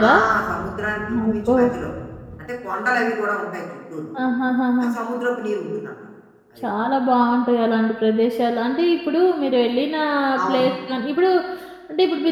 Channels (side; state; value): both; identical; correlation 1.00